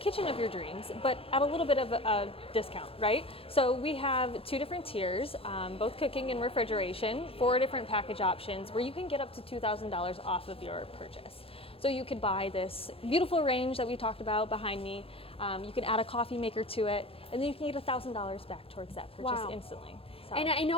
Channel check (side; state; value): right; late; 0.27 ms